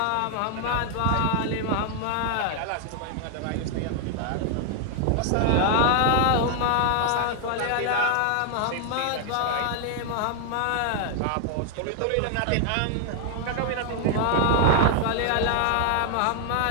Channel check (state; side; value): different; both; correlation 0.00